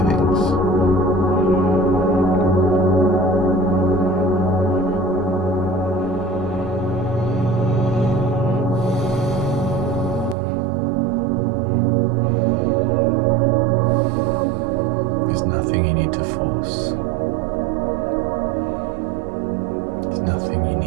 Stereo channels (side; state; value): left; drops out; at 10.4 s